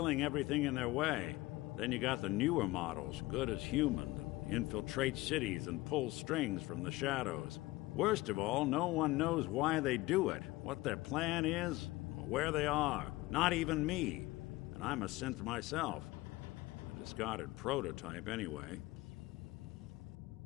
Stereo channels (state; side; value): quieter; right; 19.5 dB